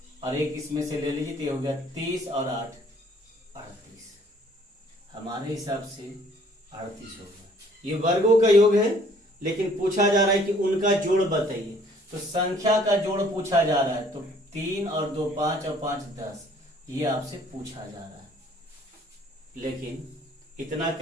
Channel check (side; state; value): both; normal; correlation 0.58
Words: और एक इसमें से ले लीजिए, तो ये हो गया 30 और 8 38। हमारे हिसाब से 38 होगा। ये वर्गों का योग है, लेकिन पूछा जा रहा है कि उनका जोड़ बताइए। तो संख्या का जोड़ पूछा जा रहा है, तो 3 और 2 5 और 5 10, ये आपसे पूछा जा रहा है। लेकिन इतना